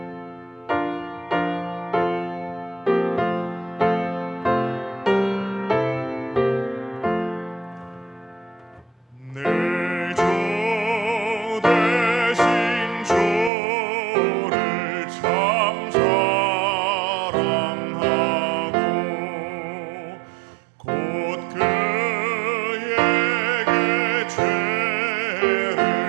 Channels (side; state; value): left; drops out; at 13.5 s